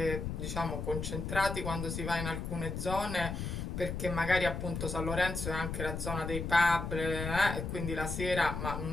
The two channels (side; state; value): left; noise; rumble, 4 dB below the sound